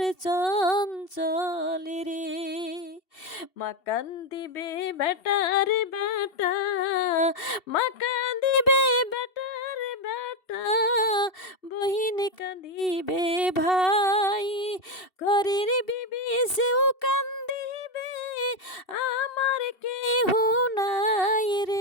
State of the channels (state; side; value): late; right; 2.7 ms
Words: চঞ্চল রে। মা কান্দিবে বেটা রে বেটা, মা কাঁদিবে বেটা রে বেটা, বহিন কাঁদিবে ভাই, ঘরের বিবি সেও কান্দিবে, আমার কেহ নাই